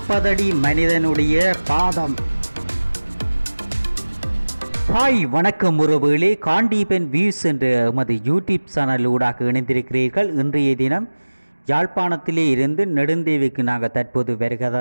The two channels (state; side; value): inverted; both; correlation -1.00